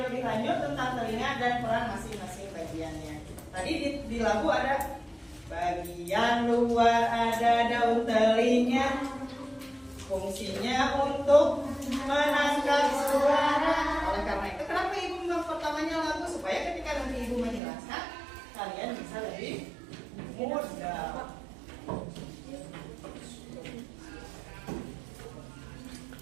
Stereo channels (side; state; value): left; drops out; at 17.6 s